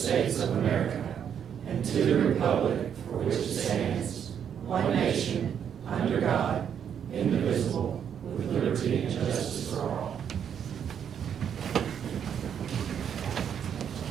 of America and to the republic for which it stands, one nation, under God, indivisible, with liberty and justice for all.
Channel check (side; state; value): left; quieter; 8.4 dB